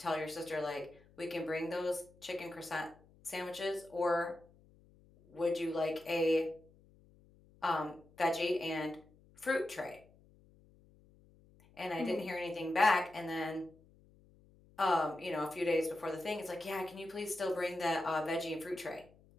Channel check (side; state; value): left; noise; hum, 27 dB below the sound